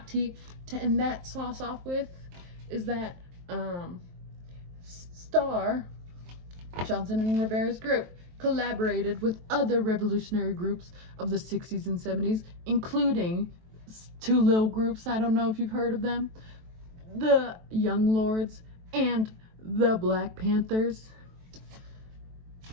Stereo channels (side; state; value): left; late; 23 ms